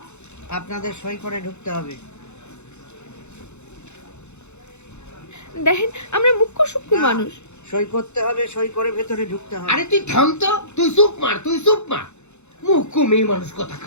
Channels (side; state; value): right; late; 0.82 ms